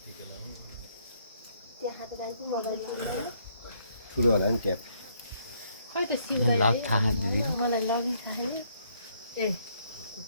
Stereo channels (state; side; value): inverted; both; correlation -0.69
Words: त्यहाँ त जान्छु ठुलो होला नि ट्याप खै त मलाई लगि खाए ए